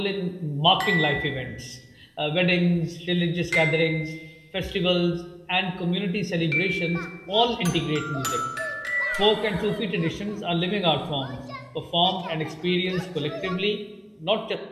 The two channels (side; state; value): both; identical; correlation 1.00